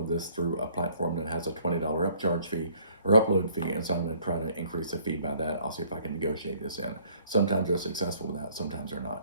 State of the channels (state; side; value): inverted; both; correlation -0.60